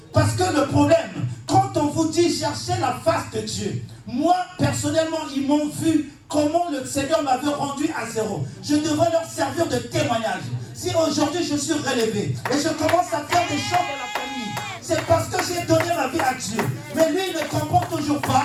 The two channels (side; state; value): both; identical; correlation 1.00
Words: Parce que le problème, quand on vous dit chercher la face de Dieu, moi, personnellement, ils m'ont vu comment le Seigneur m'avait rendu à zéro. Je devrais leur servir de témoignage. Si aujourd'hui je suis relevé et je commence à faire des choses dans la famille, c'est parce que j'ai donné ma vie à Dieu. Mais lui, il ne comprend toujours